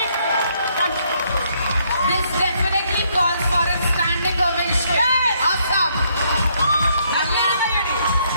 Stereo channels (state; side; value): inverted; both; correlation -0.71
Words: This definitely calls for a standing ovation. Yes. Awesome.